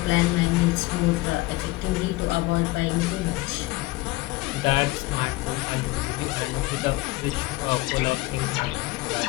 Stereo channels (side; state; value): right; quieter; 20.8 dB